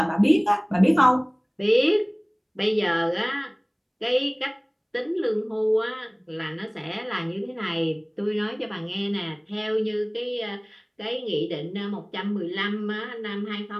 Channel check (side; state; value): both; identical; correlation 1.00